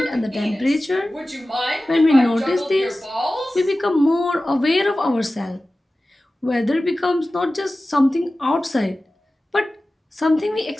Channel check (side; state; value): both; normal; correlation 0.96